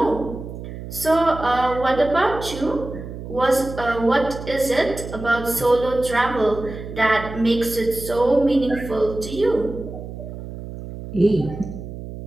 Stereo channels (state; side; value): noise; right; hum, 10 dB below the sound